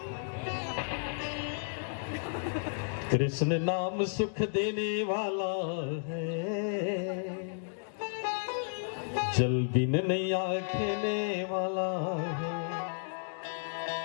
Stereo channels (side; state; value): right; silent; digital silence